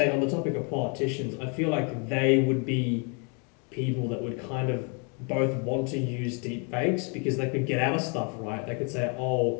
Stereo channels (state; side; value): quieter; right; 35.8 dB